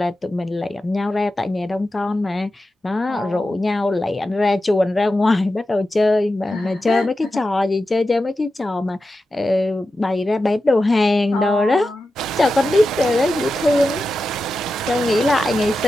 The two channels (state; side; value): normal; both; correlation 0.91